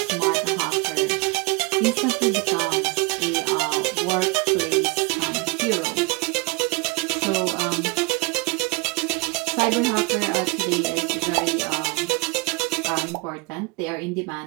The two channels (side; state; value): left; quieter; 26.0 dB